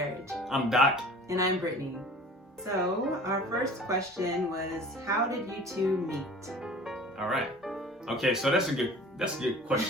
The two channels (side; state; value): both; normal; correlation 0.44